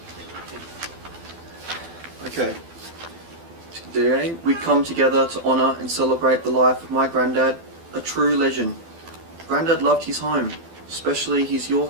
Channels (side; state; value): left; late; 12 ms